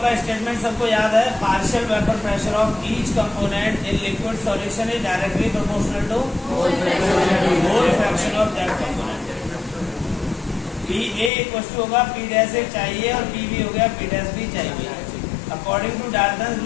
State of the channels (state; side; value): drops out; right; at 11.3 s